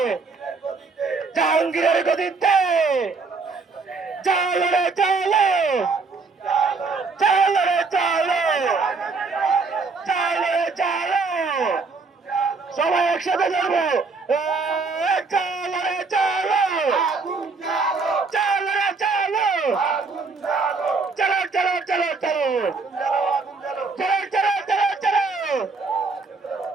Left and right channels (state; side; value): quieter; left; 4.3 dB